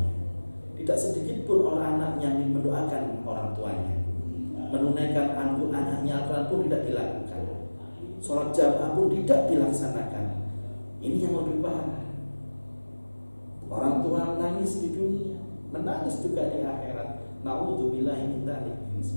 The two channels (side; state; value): both; inverted; correlation -1.00